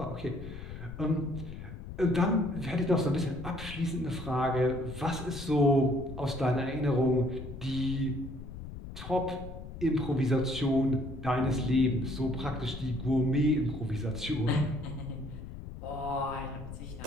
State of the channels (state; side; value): noise; left; rumble, 11 dB below the sound